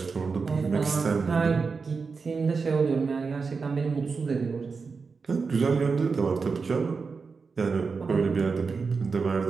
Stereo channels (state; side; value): quieter; left; 4.9 dB